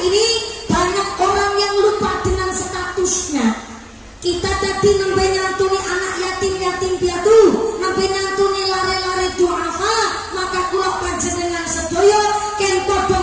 ini banyak orang yang lupa dengan statusnya. Kita tadi nembe nyantuni anak yatim piatu, nembe nyantuni lare-lare duafa, maka kula panjenengan sedaya ken padha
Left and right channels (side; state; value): both; identical; correlation 1.00